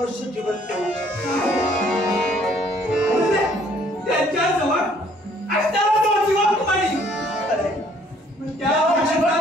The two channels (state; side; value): normal; both; correlation 0.62